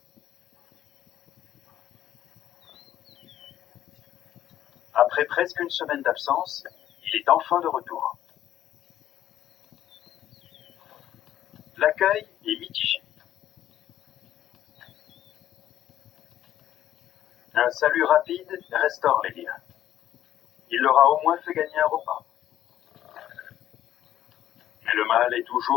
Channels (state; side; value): quieter; right; 12.1 dB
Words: Après presque une semaine d'absence, il est enfin de retour. L'accueil est mitigé. Un salut rapide restaure les liens. Il leur a au moins fait gagner un repas. Mais le mâle est